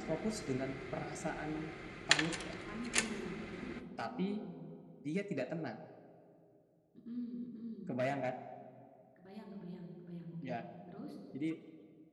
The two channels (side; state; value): both; identical; correlation 1.00